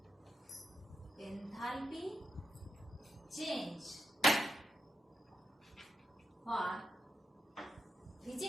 Enthalpy change for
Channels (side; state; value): both; normal; correlation 0.85